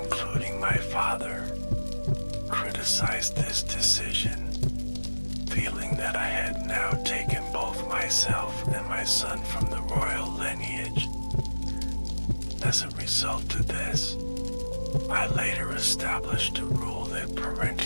my father, criticized this decision, feeling that I had now taken both myself and my son from the royal lineage. As a result of this, I later established a rule that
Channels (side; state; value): both; inverted; correlation -1.00